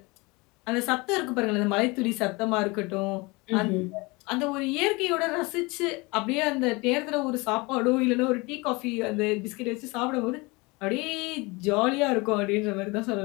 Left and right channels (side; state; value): right; quieter; 25.5 dB